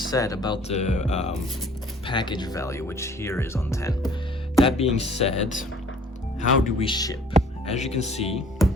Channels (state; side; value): normal; both; correlation 0.54